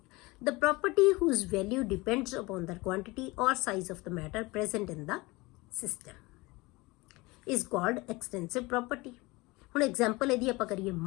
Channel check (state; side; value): quieter; right; 23.0 dB